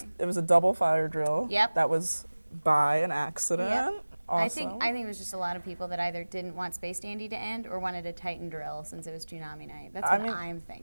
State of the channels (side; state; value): both; inverted; correlation -1.00